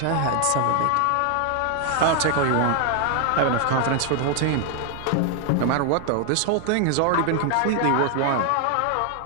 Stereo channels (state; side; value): different; both; correlation 0.00